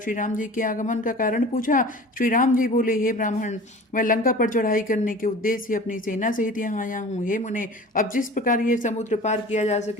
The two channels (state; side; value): normal; both; correlation 0.40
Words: श्री राम जी के आगमन का कारण पूछा। श्री राम जी बोले, हे ब्राह्मण, मैं लंका पर चढ़ाई करने के उद्देश्य से अपनी सेना सहित यहाँ आया हूँ। हे मुने, अब जिस प्रकार ये समुद्र पार किया जा